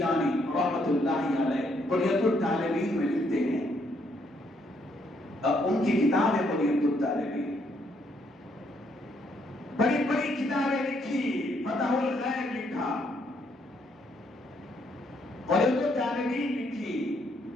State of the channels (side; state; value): both; normal; correlation 0.72